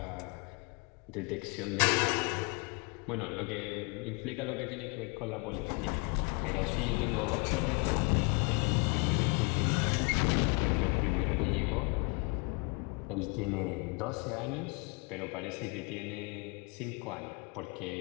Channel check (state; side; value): quieter; right; 31.9 dB